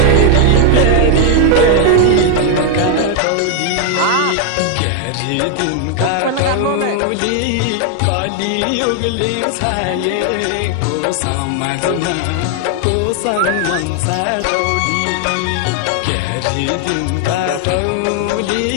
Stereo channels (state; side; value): different; both; correlation 0.00